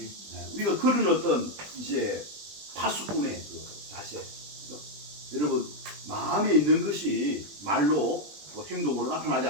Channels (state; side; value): late; left; 20 ms